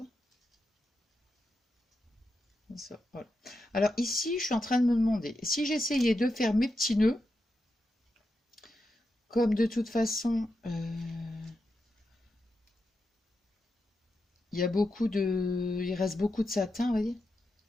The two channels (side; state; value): both; normal; correlation 0.87